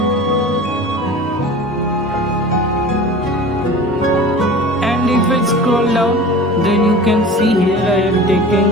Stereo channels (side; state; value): both; normal; correlation 0.38